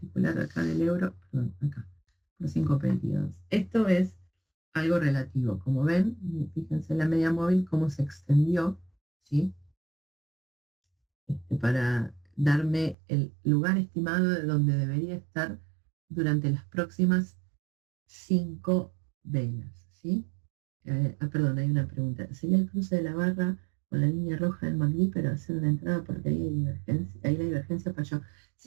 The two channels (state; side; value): drops out; left; at 13.0 s